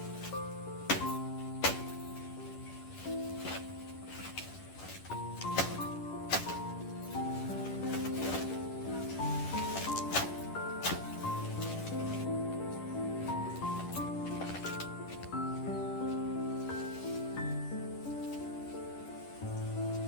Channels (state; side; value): late; right; 10 ms